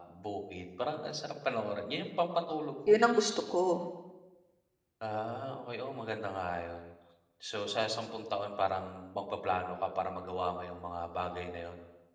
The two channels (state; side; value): identical; both; correlation 1.00